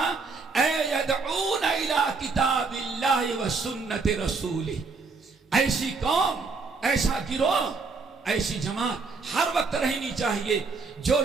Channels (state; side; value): quieter; left; 4.3 dB